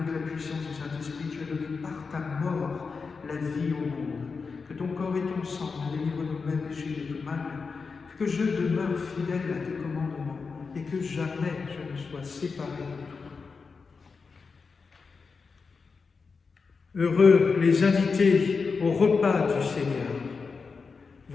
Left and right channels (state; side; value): quieter; right; 4.9 dB